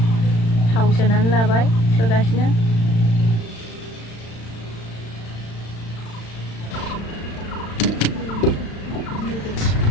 थाव सोनानै लाबाय सोगासिनो।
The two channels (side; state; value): right; late; 35 ms